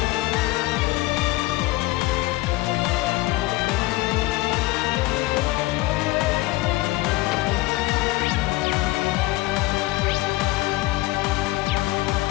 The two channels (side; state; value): right; quieter; 19.6 dB